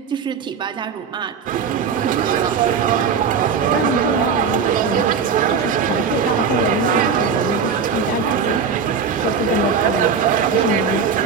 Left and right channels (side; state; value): left; quieter; 6.0 dB